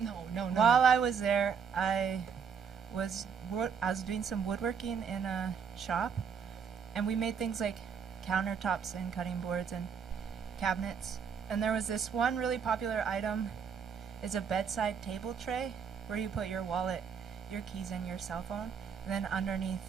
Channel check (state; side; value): quieter; left; 6.7 dB